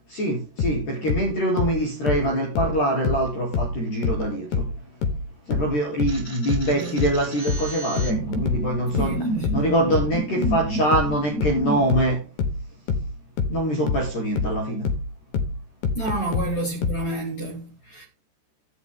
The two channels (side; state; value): right; late; 13 ms